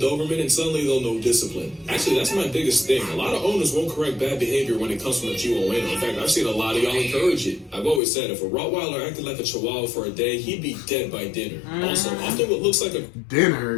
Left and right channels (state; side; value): drops out; right; at 8.0 s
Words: and suddenly they'll know discipline. Actually, that's my biggest thing. A lot of owners won't correct bad behavior when it comes from a Chihuahua. In fact, I've seen a lot of y'all encourage it. I've always said if a Rottweiler acted like a Chihuahua for a day, he'd be dead by dinner. Also, often what looks like a